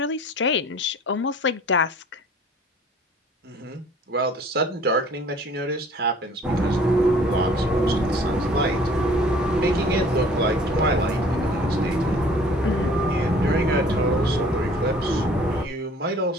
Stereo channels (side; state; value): both; normal; correlation 0.52